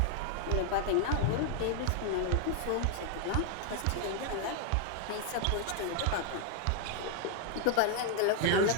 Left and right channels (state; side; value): different; both; correlation 0.00